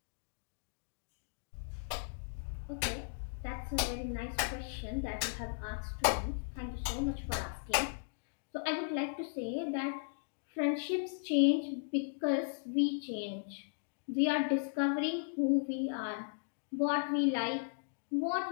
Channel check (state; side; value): silent; right; digital silence